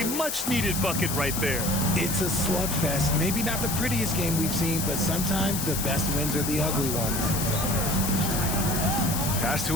much-needed bucket right there. It's a slugfest. Maybe not the prettiest game we've seen, but sometimes the best wins are the ugly ones. Pass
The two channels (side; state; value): left; noise; hiss, 3 dB below the sound